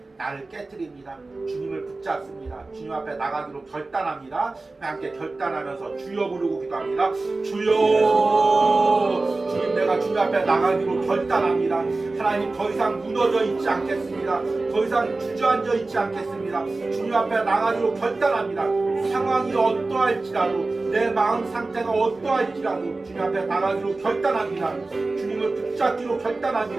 나를 깨트립니다. 주님을 붙잡습니다. 주님 앞에 나가기로 결단합니다. 함께 결단하면서 주여 부르고 기도합니다. 주여 주님 내가 주님 앞에 나가기로 결단합니다. 하나님 더 이상 무너져 있지 않겠습니다. 더 이상 주저앉아 있지 않겠습니다. 주님 앞에 나가기로 결단합니다. 상황이 어떠할지라도 내 마음 상태가 어떠할지라도 주님 앞에 나가기로 결단합니다. 주님을 붙잡기로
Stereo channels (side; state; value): left; quieter; 3.4 dB